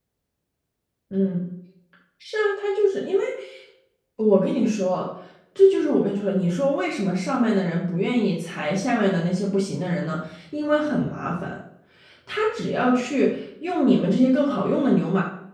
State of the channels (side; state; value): both; identical; correlation 1.00